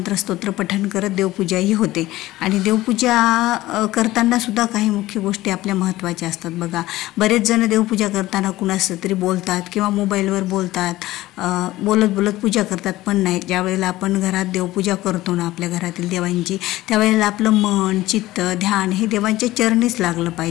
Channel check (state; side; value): quieter; right; 16.9 dB